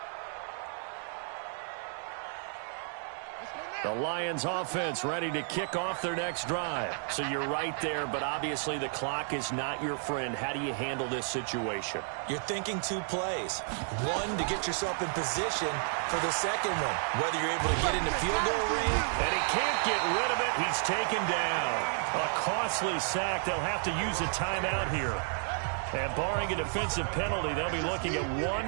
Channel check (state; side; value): silent; left; 55 dB below the other